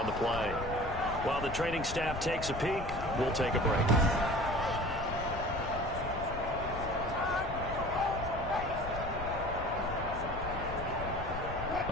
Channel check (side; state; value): left; noise; rumble, 8 dB below the sound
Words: the play. While the training staff takes a peek, we'll take a break.